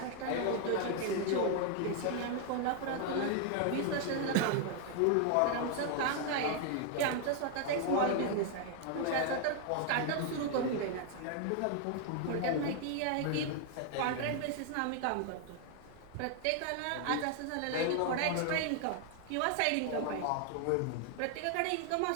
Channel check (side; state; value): both; different; correlation 0.00